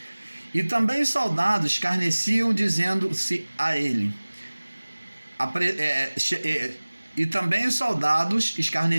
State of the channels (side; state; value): both; inverted; correlation -1.00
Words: E também os soldados escarneciam, dizendo-se a ele. E também os soldados